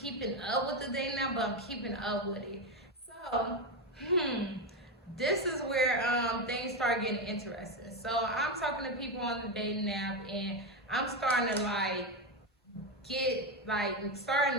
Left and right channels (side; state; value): both; normal; correlation 0.11